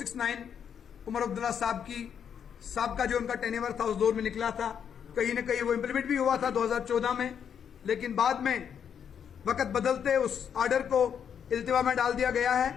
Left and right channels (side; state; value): right; quieter; 8.0 dB